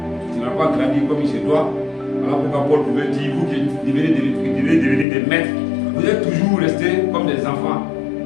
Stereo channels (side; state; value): right; drops out; at 5.1 s